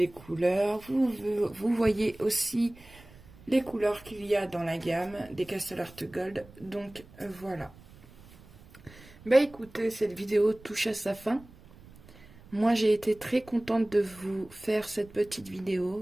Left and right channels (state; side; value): noise; right; rumble, 23 dB below the sound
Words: couleurs. Vous voyez aussi les couleurs qu'il y a dans la gamme des Castle Art Gold. Donc voilà. Bah écoutez, cette vidéo touche à sa fin. Moi j'ai été très contente de vous faire cette petite vidéo.